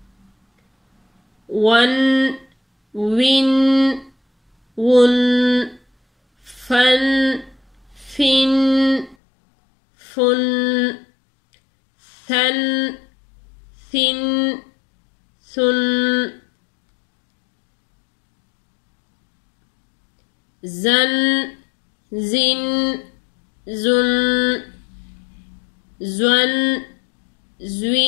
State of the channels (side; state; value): right; drops out; at 9.2 s